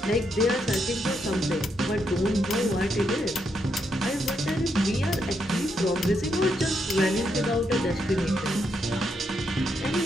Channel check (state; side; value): normal; both; correlation 0.79